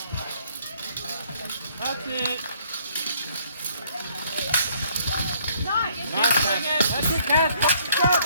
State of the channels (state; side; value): inverted; both; correlation -0.64